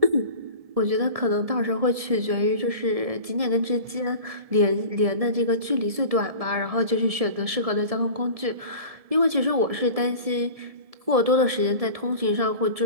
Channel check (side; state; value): left; late; 1.7 ms